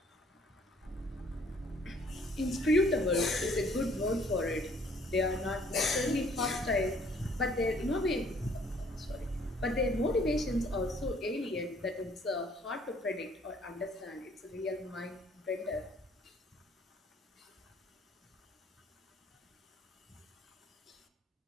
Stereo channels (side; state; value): both; normal; correlation 0.60